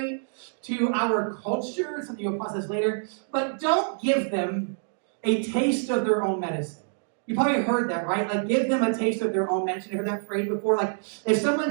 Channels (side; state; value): left; silent; digital silence